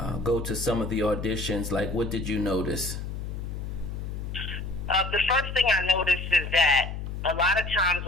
go to some of the auditions? Like, what did you notice? The first thing I noticed is that a lot of times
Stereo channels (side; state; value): left; noise; hum, 6 dB below the sound